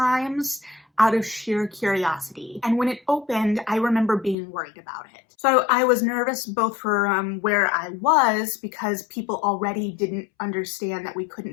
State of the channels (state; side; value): drops out; right; at 4.4 s